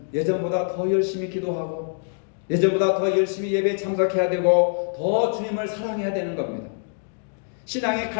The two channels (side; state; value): right; silent; digital silence